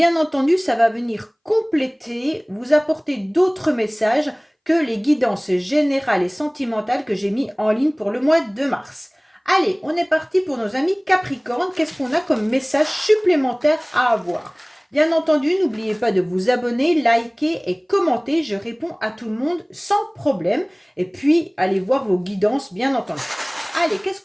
entendu, ça va venir compléter, vous apporter d'autres messages que les guidances générales et sentimentales que j'ai mis en ligne pour le mois de mars. Allez, on est parti pour nos amis Capricorne. Qu'est-ce qu'on a comme message supplémentaire à avoir ? Bien entendu, n'oubliez pas de vous abonner, liker et commenter. Je réponds à tout le monde sans problème. Et puis, allez voir vos guidances, bien entendu. Allez, qu'est-ce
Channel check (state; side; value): identical; both; correlation 1.00